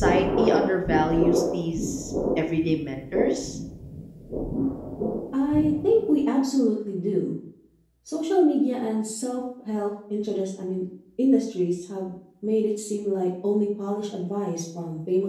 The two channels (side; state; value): both; identical; correlation 1.00